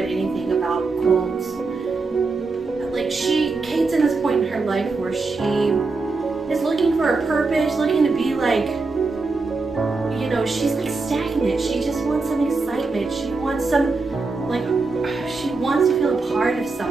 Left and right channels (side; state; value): left; quieter; 3.9 dB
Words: anything about cults, like Kate's in this point in her life where she is looking for a purpose, looking to be like, she's like stagnant. She wants some excitement. She wants some, like, she wants to feel a part of